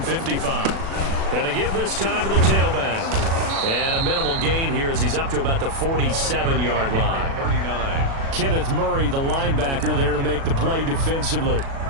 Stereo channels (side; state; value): left; late; 36 ms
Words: 55. And to give this time to the tailback. And a minimal gain here as he's up to about the 47-yard line. 39. Kenneth Murray, the linebacker, there to make the play defensively.